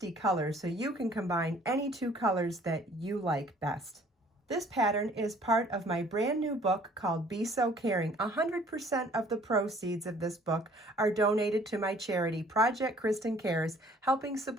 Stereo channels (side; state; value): both; normal; correlation 0.56